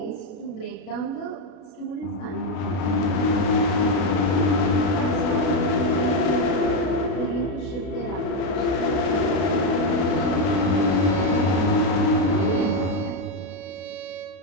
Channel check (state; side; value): late; right; 33 ms